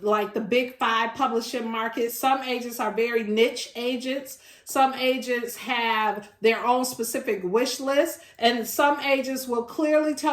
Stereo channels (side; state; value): both; identical; correlation 1.00